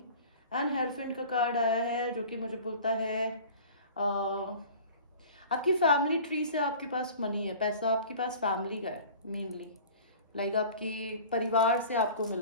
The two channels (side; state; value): both; inverted; correlation -0.42